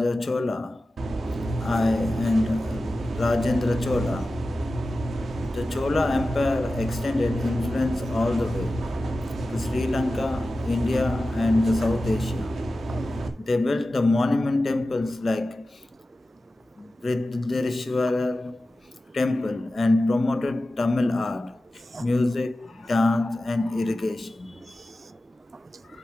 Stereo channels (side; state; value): both; normal; correlation 0.94